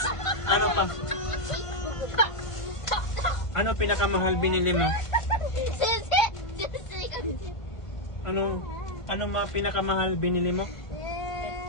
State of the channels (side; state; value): right; late; 1.5 ms